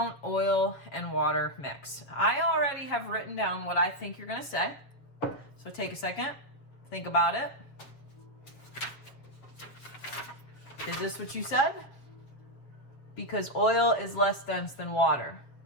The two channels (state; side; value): late; right; 7.4 ms